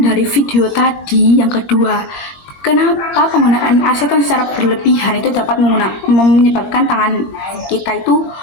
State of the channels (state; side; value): late; right; 21 ms